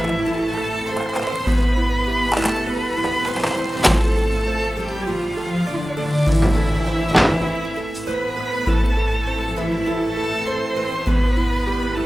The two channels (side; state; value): both; normal; correlation 0.95